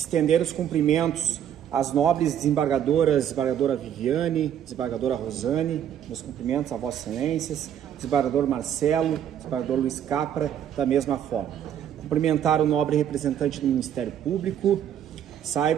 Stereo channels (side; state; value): left; quieter; 9.7 dB